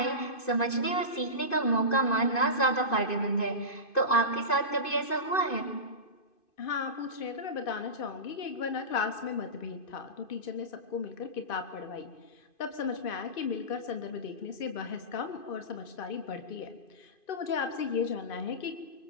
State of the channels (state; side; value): late; right; 2.5 ms